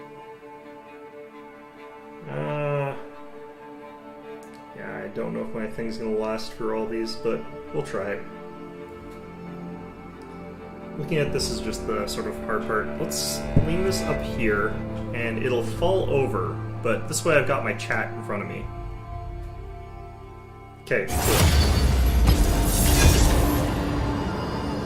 yeah, I don't know if my thing's gonna last for all these, but we'll try it. Looking at this is just the sort of hard part. Let's lean this up here, and it'll fall over, but this way I've got my chat in front of me. Okay, cool.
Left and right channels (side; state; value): both; identical; correlation 1.00